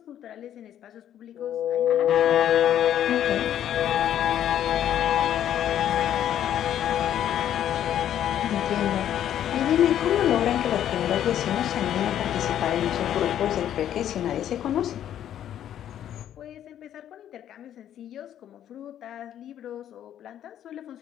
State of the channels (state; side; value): quieter; right; 10.8 dB